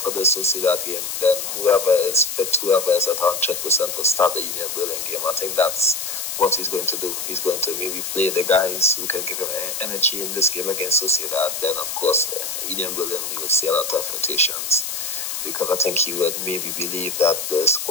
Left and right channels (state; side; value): noise; left; hiss, 4 dB below the sound